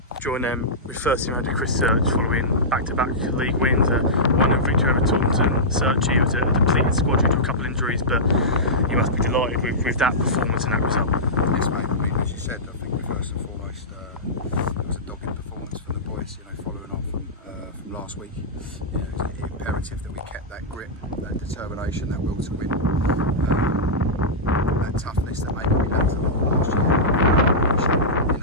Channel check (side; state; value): both; normal; correlation -0.13